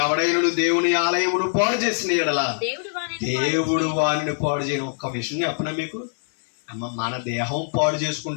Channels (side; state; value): right; silent; 63 dB below the other